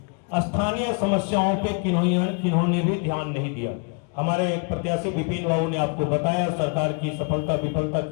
स्थानीय समस्याओं पे किन्होंने भी ध्यान नहीं दिया। हमारे एक प्रत्याशी विपिन बाबू ने आपको बताया सरकार की सफलता विफलता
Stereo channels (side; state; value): right; quieter; 34.9 dB